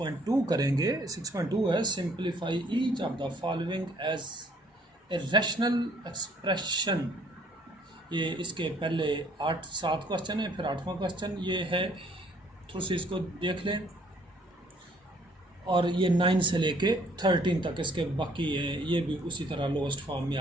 करेंगे। 6.2 है simplify each of the following as a rational expression. ये इसके पहले 7 क्वेश्चन है, फिर 8वां क्वेश्चन ये है। थोड़ी सी इसको देख लें। और ये 9 से लेके 13 तक इसके बाकी हैं, ये भी उसी तरह लोएस्ट फॉर्म में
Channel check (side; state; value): both; normal; correlation 0.62